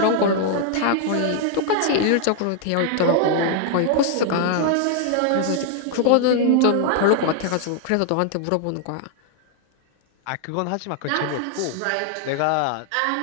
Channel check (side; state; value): both; different; correlation 0.00